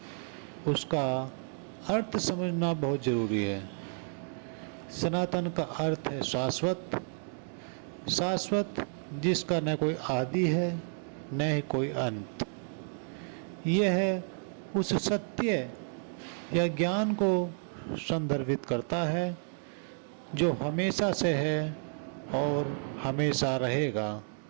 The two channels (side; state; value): left; silent; 57 dB below the other